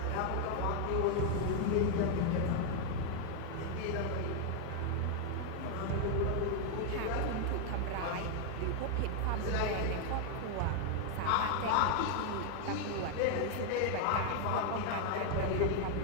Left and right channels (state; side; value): different; both; correlation 0.00